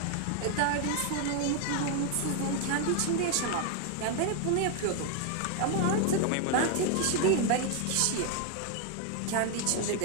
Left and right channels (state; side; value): different; both; correlation 0.00